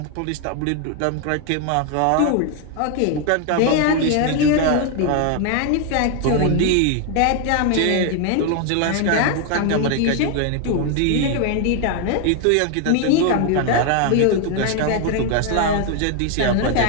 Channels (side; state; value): both; different; correlation 0.01